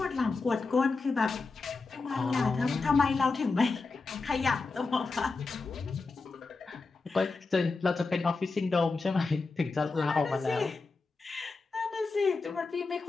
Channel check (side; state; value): right; quieter; 4.0 dB